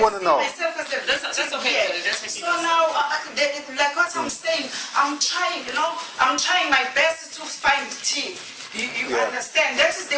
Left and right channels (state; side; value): identical; both; correlation 1.00